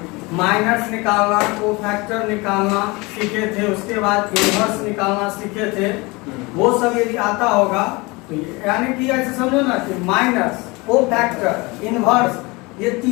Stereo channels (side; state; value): right; quieter; 24.9 dB